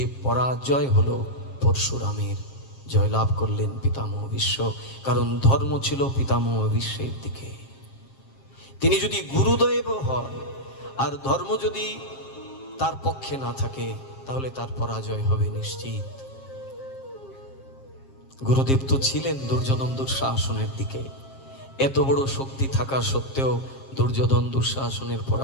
পরাজয় হলো পরশুরামের। জয়লাভ করলেন পিতামহ বিশ্ব, কারণ ধর্ম ছিল পিতামহ বিশ্বের দিকে। তিনি যদি গুরুদেব হন আর ধর্ম যদি তার পক্ষে না থাকে, তাহলে তার পরাজয় হবে নিশ্চিত। গুরুদেব তো ছিলেন দুর্যোধন দুঃশাসনের দিকে। এত বড় শক্তি থাকা সত্ত্বেও দুর্যোধন দুঃশাসনের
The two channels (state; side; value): late; right; 7.5 ms